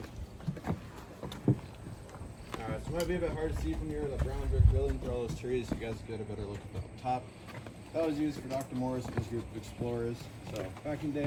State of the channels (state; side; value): identical; both; correlation 1.00